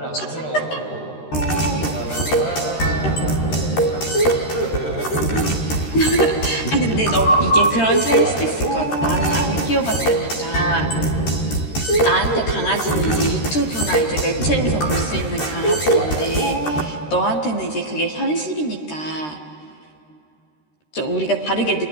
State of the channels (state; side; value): late; right; 13 ms